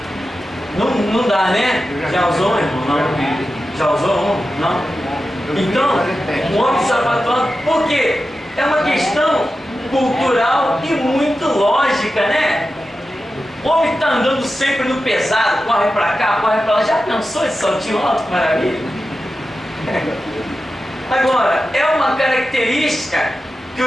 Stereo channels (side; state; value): both; normal; correlation 0.92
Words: Não dá, né? Já usou, irmão? Não. Já usou um? Não? Então, um homem de sapato alto, por quê? É uma questão cultural e muito lógica, né? O homem está andando sempre no pesado, corre para cá, corre para lá. Já pensou esse saltinho alto? Maravilha! Agora, é uma característica que